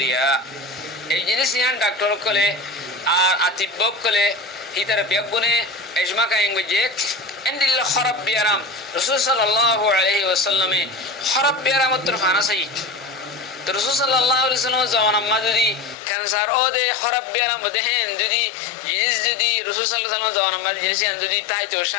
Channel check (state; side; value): drops out; right; at 16.0 s